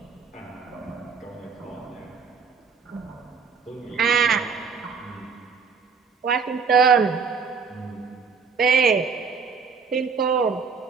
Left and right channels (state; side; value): quieter; left; 5.5 dB